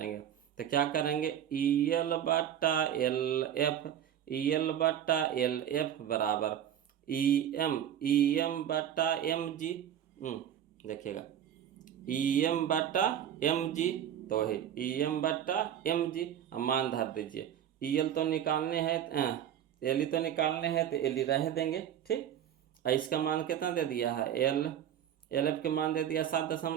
तो क्या करेंगे, ई एल बटा एल एफ बराबर ई एम बटा एम जी। देखिएगा ई एम बटा एम जी, तो है ई एम बटा एम जी। अब मान धर दीजिए, ई एल तो निकालने हैं, एल ई तो निकालने हैं, तो एल ई रह देंगे, ठीक। और इसका मान कितना दे दिया है, एल एफ के मान दे दिया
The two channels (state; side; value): quieter; left; 9.9 dB